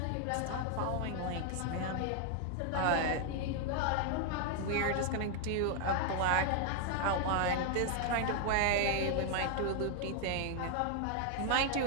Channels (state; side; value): different; both; correlation 0.00